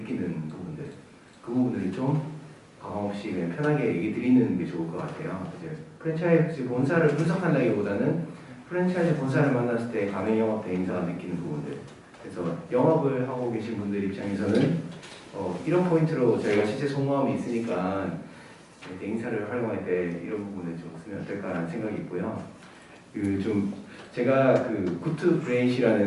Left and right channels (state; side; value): identical; both; correlation 1.00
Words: 부분들, 그 부분들을 좀 가감 없이 그냥 편하게 얘기 드리는 게 좋을 것 같아요. 이제 프랜차이즈 본사를 분석한다기보다는 프랜차이즈 본사를 만났을 때 가맹영업 대행사가 느끼는 부분들, 그래서 영업을 하고 계신 분들 입장에서는 이런 포인트로 저희가 실제 속마음이 있으니까 대행사를 활용할 때 이런 부분을 좀 쓰면 어떨까라는 생각이 있고요. 제가 굿투